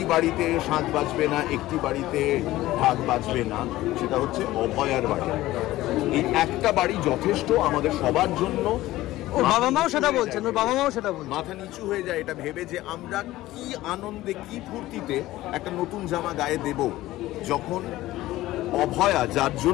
বাড়িতে শাঁখ বাজবে না, একটি বাড়িতে ঢাক বাজবে না, সেটা হচ্ছে অভয়ার বাড়ি। এই একটা বাড়ি যথেষ্ট আমাদের সবার জন্য। ওর বাবা মাও সেটা বলছেন, মাথা নিচু হয়ে যায় এটা ভেবে যে আমরা কি আনন্দে, কি ফুর্তিতে একটা নতুন জামা গায়ে দেব, যখন অভয়া, যার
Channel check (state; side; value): quieter; right; 16.5 dB